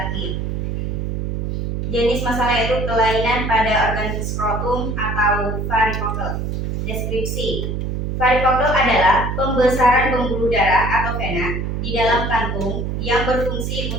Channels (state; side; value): noise; right; hum, 2 dB below the sound